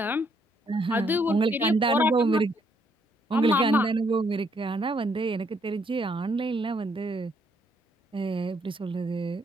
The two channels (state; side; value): normal; both; correlation 0.71